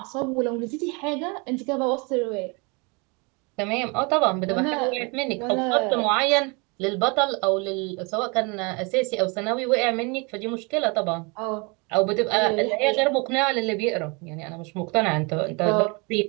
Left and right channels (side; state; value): left; quieter; 30.2 dB